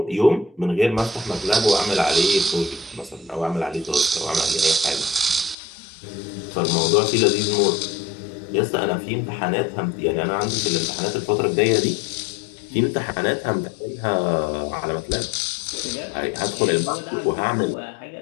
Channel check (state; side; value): drops out; right; at 5.6 s